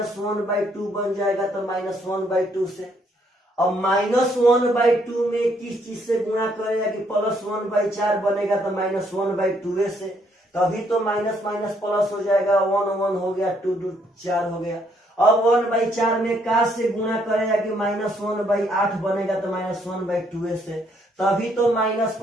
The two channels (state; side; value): normal; both; correlation 0.70